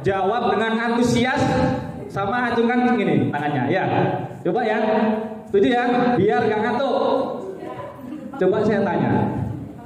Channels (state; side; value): identical; both; correlation 1.00